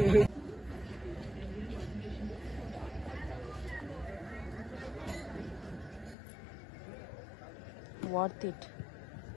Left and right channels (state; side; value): drops out; right; at 6.2 s